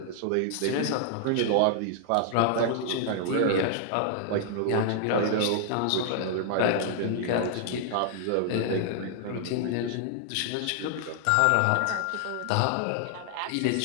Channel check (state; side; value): different; both; correlation -0.01